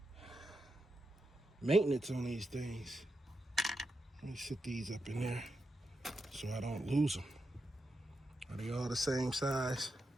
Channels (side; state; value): both; normal; correlation 0.86